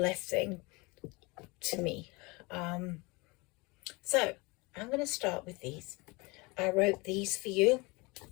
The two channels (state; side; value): quieter; right; 25.9 dB